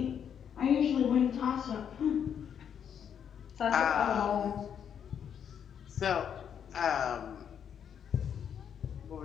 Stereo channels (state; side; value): quieter; right; 8.3 dB